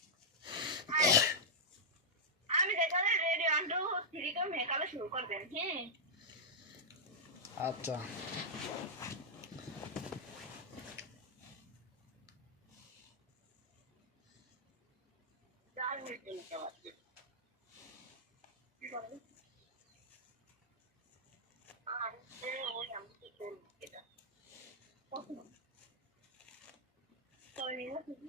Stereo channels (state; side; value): normal; both; correlation -0.08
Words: শুরু করবেন হ্যাঁ আচ্ছা